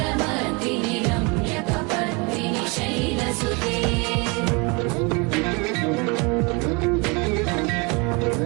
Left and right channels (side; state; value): left; quieter; 29.5 dB